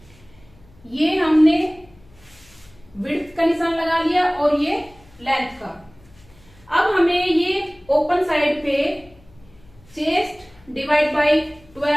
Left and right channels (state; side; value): noise; left; hum, 27 dB below the sound